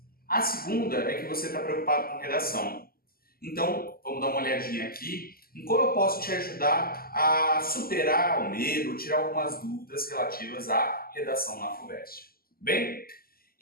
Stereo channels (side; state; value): right; late; 0.43 ms